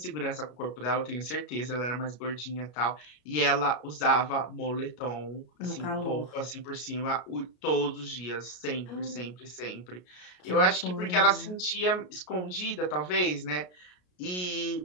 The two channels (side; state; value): right; late; 33 ms